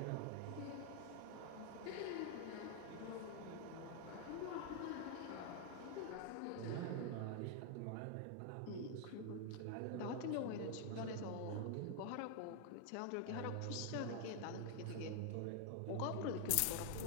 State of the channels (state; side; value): different; both; correlation 0.00